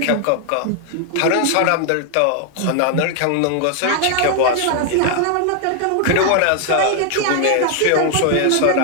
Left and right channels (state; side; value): different; both; correlation 0.00